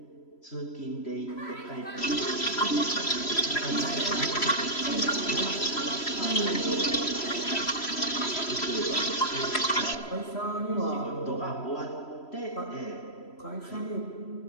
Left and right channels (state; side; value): late; right; 3.0 ms